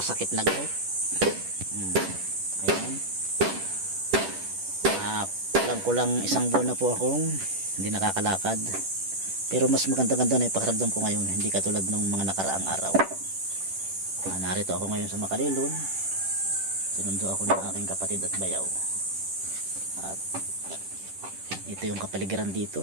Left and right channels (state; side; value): late; left; 10 ms